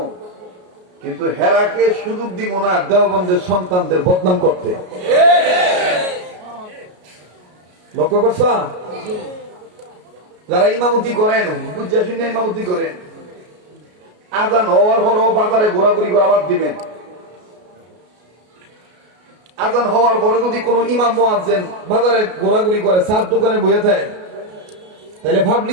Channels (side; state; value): left; late; 33 ms